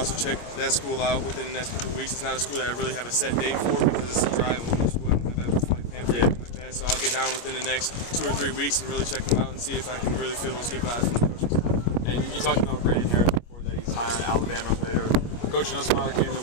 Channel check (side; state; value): right; late; 25 ms